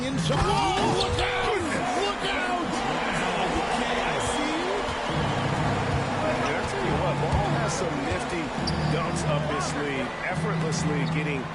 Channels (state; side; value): identical; both; correlation 1.00